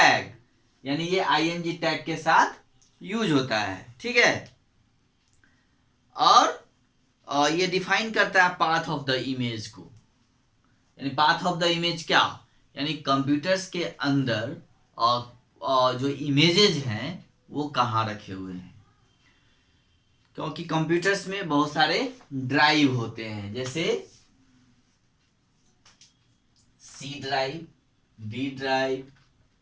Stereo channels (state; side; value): identical; both; correlation 1.00